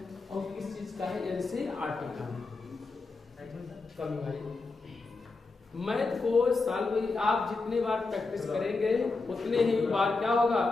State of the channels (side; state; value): right; quieter; 3.8 dB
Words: और किस चीज का है? एनसीईआरटी का। कमी भाई मैथ को सॉल्व आप जितने बार प्रैक्टिस करेंगे उतने ही बार क्या होगा,